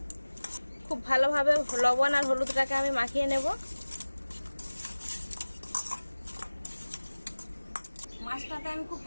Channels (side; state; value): both; inverted; correlation -1.00